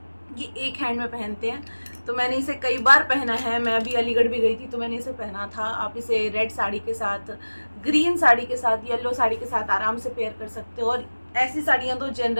ये एक हैंड में पहनते हैं। तो मैंने इसे कई बार पहना है। मैं अभी अलीगढ़ भी गई थी तो मैंने इसे पहना था। आप इसे रेड साड़ी के साथ, ग्रीन साड़ी के साथ, येलो साड़ी के साथ आराम से पेयर कर सकते हो। और ऐसी साड़ियाँ तो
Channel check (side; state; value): both; inverted; correlation -1.00